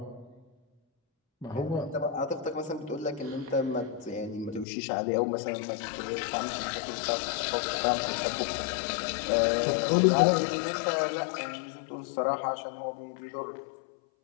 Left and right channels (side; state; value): right; drops out; at 4.7 s